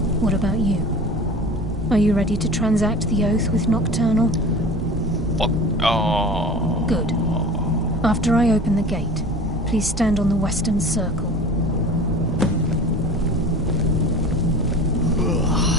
What about you? Are you ready to transact the oath with Nocturnal? Fuck. Oh. Good. After I open the gate, please stand on the western circle.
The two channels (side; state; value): both; normal; correlation 0.38